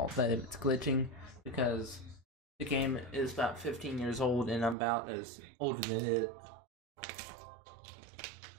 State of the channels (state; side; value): drops out; left; at 4.8 s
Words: that it's glitching because the game is about 15 years old and I'm about as older than it.